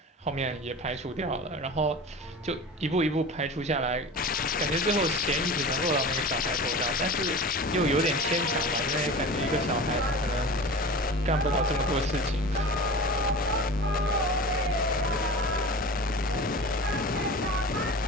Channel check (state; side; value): normal; both; correlation 0.34